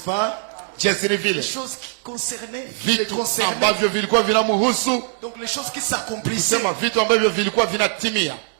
jinsi ni Les vile choses qui concernaient, les vitu concernaient. ambavyo vilikuwa vinamhusu, Donc les choses qui s'accomplissaient. kusema vitu ambavyo vilikuwa vinatimia.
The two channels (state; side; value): silent; left; 61 dB below the other